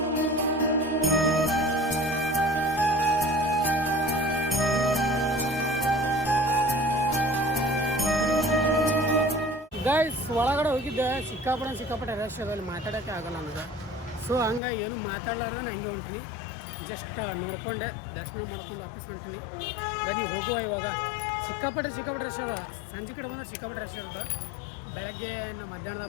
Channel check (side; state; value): right; drops out; at 14.6 s